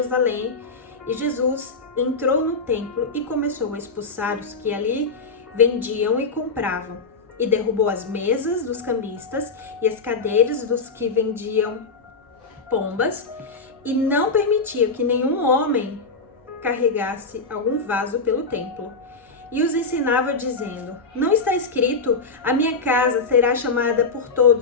e Jesus entrou no templo e começou a expulsar os que ali vendiam e compravam, e derrubou as mesas dos cambistas e as cadeiras dos que vendiam pombas, e não permitia que nenhum homem carregasse algum vaso pelo templo. E os ensinava dizendo: não está escrito: a minha casa será chamada por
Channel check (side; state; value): right; quieter; 4.0 dB